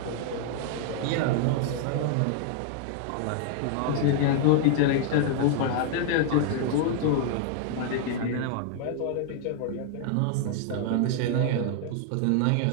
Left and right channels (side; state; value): both; different; correlation 0.00